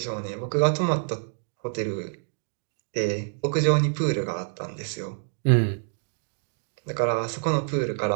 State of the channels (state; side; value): silent; left; digital silence